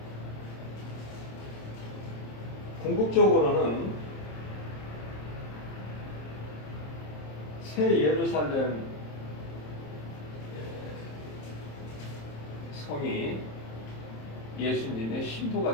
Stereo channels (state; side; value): late; right; 27 ms